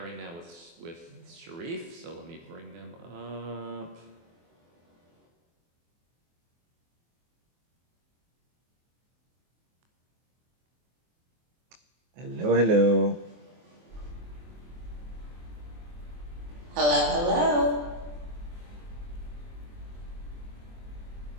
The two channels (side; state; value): left; late; 24 ms